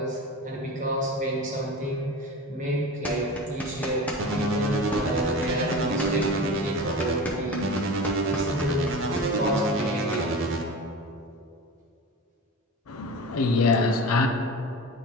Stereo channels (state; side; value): normal; both; correlation 0.31